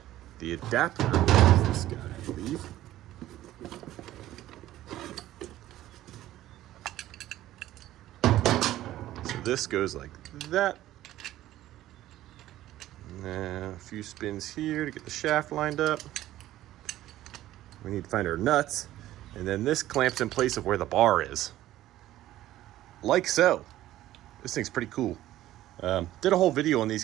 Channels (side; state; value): left; quieter; 14.3 dB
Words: the adapter is this guy, I believe. So this goes like that. And then a few spins here to get the shaft lined up. We need to find our nuts. And then this clamps in place of where the bar is. Like so. This thing's pretty cool. Did a whole video on these